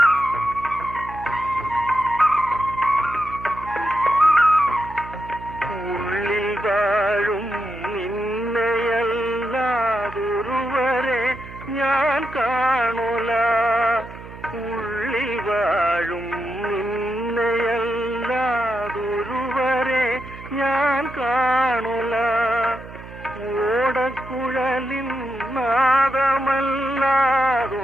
ഞാൻ കാണുല ഉള്ളിൽ വാഴും നിന്നെയല്ലാതൊരുവരെ ഞാൻ കാണുല ഓടക്കുഴലിൻ നാദമല്ലാതൊന്നും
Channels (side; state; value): right; noise; hum, 15 dB below the sound